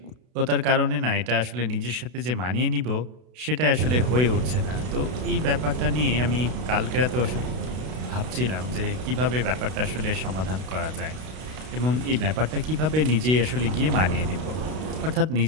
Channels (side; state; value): left; late; 32 ms